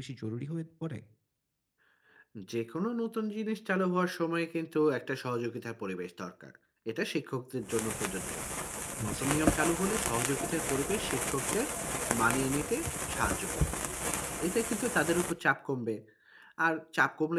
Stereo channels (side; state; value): both; identical; correlation 1.00